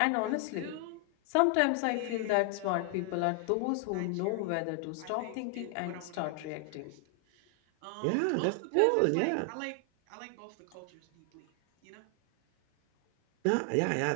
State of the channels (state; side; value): different; both; correlation 0.00